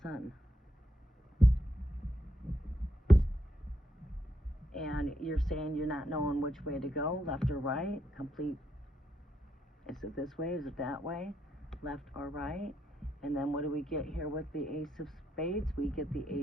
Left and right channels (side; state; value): both; normal; correlation 0.79